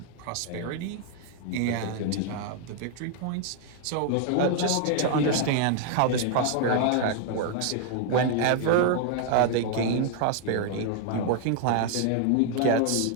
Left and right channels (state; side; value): different; both; correlation 0.00